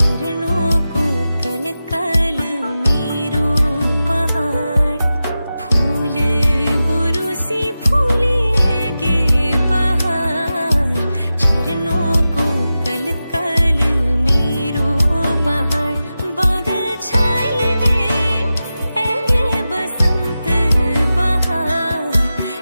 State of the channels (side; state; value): both; inverted; correlation -0.93